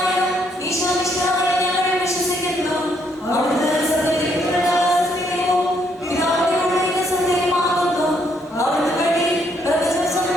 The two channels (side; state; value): both; normal; correlation 0.71